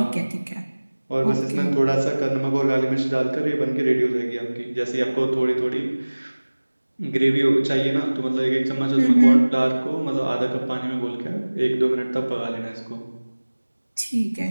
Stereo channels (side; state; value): both; inverted; correlation -1.00